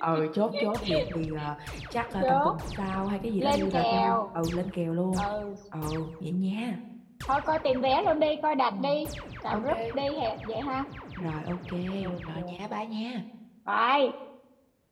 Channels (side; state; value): both; identical; correlation 1.00